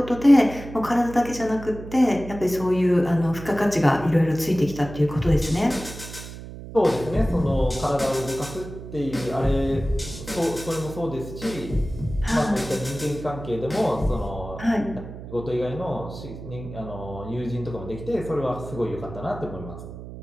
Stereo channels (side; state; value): right; noise; hum, 12 dB below the sound